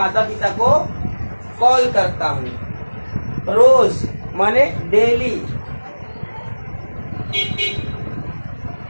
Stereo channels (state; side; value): inverted; both; correlation -1.00